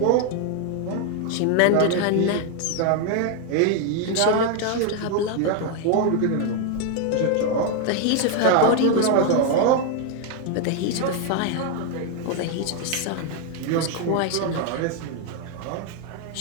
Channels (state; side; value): different; both; correlation 0.01